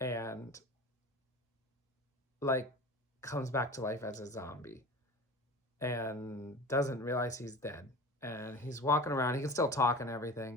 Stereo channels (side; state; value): both; normal; correlation 0.34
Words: like comes back to life as a zombie and doesn't realize he's dead. And he's walking around, he can still talk and